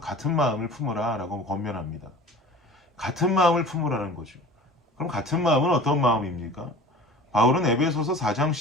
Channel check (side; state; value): both; normal; correlation 0.42